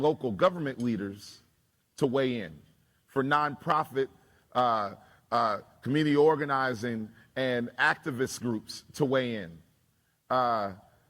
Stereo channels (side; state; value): both; identical; correlation 1.00